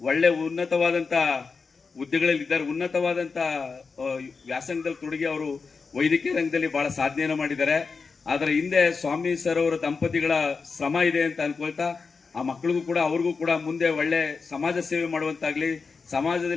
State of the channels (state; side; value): quieter; right; 4.8 dB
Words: ಉನ್ನತವಾದಂತ ಹುದ್ದೆಗಳಲ್ಲಿದ್ದಾರೆ, ಉನ್ನತವಾದಂತ ವ್ಯಾಸಂಗದಲ್ಲಿ ತೊಡಗಿ ಅವರು ವೈದ್ಯಕೀಯ ರಂಗದಲ್ಲಿ ಬಹಳ ಸಾಧನೆಯನ್ನು ಮಾಡಿದ್ದಾರೆ. ಆದ್ರೆ ಹಿಂದೆ ಸ್ವಾಮಿ ಸರ್ ಅವರ ದಂಪತಿಗಳ ಶ್ರಮ ಇದೆ ಅಂತ ಅನ್ಕೊಳ್ತಾ ಆ ಮಕ್ಕಳಿಗೂ ಕೂಡ ಅವ್ರಿಗೂ ಕೂಡ ಮುಂದೆ ಒಳ್ಳೆ ಸಮಾಜ ಸೇವೆ ಮಾಡುವಂತಾಗ್ಲಿ,